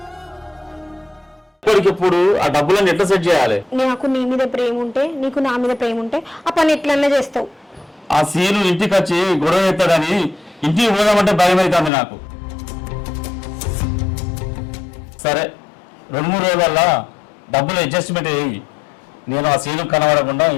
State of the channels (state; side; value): drops out; right; at 11.9 s